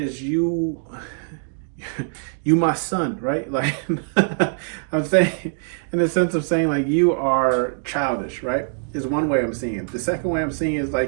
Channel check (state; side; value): silent; left; digital silence